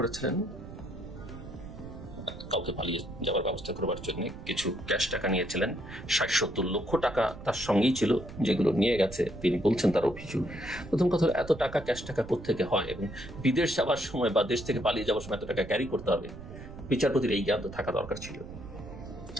কাউকে পালিয়ে যাওয়ার ব্যবস্থা করবার জন্য। কিছু ক্যাশ টাকা নিয়েছিলেন, 60-70 লক্ষ টাকা তার সঙ্গেই ছিল, যেগুলো নিয়ে গেছে। তিনি বলছেন তার অভিযোগ। প্রথম কথা, এত টাকা ক্যাশ টাকা কোত্থেকে হয়, এবং বিদেশ যাওয়ার সময় বা দেশ থেকে পালিয়ে যাওয়ার সময় এত টাকা ক্যারি করতে হবে, বিচারপতির এই জ্ঞান তো থাকা দরকার ছিল।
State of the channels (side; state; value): right; noise; rumble, 13 dB below the sound